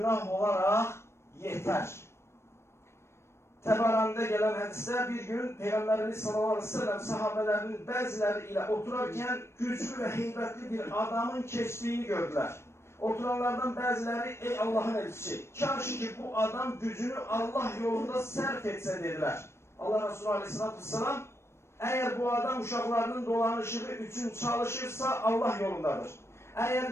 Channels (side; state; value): right; late; 0.13 ms